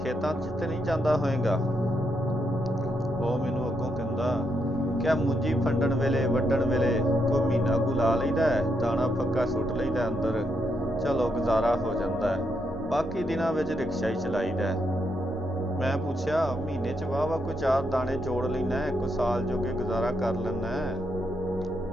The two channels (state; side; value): normal; both; correlation 0.80